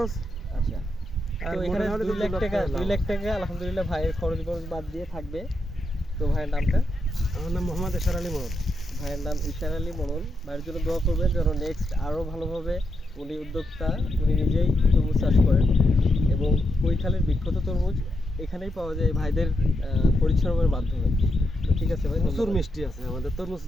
আচ্ছা, আর তো এখানে মনে হলে 2 লাখ টাকা, 2 লাখ টাকা আলহামদুলিল্লাহ ভাইয়ের খরচ বাদ দিয়ে থাকবে। তো ভাইয়ের নামটা? আমার নাম মোহাম্মদ এশার আলী মোহাম্মদ। ভাইয়ের নাম ইশার আলী মনন। ভাইয়ের জন্য দোয়া করবেন যেন নেক্সট আরও ভালোভাবে, উনি উদ্যোক্তা, উনি নিজেই তরমুজ চাষ করেন এবং কৈখালীর বিখ্যাত তরমুজ এখানেই পাওয়া যায় ভাইদের পরিশ্রমের মাধ্যমে। তো ঠিক আছে ভাই, প্রচুর মিষ্টি আছে আমাদের তরমুজ,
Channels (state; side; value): normal; both; correlation 0.83